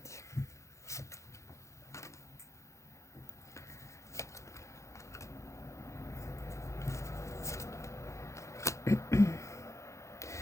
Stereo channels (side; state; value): right; late; 0.14 ms